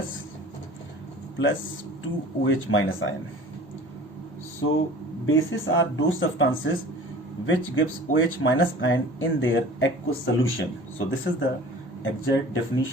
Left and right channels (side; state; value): both; normal; correlation 0.43